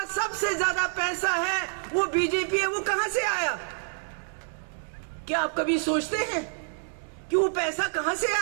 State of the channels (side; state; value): left; silent; digital silence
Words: सबसे ज्यादा पैसा है वो बीजेपी है। वो कहां से आया? क्या आप कभी सोचते हैं कि वो पैसा कहां से